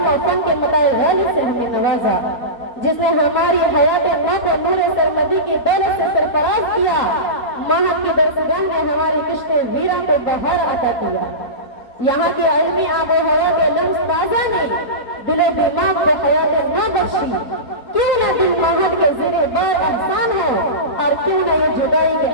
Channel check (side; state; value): right; late; 3.9 ms